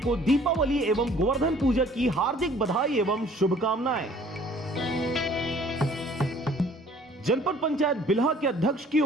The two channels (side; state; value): both; normal; correlation 0.54